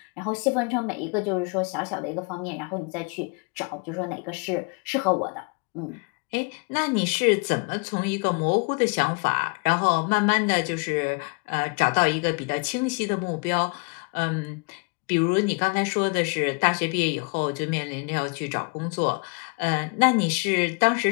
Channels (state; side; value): quieter; right; 33.3 dB